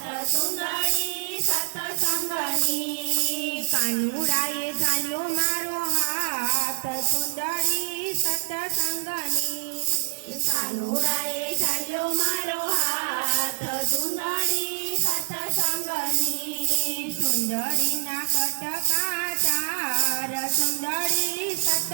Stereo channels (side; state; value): left; silent; 61 dB below the other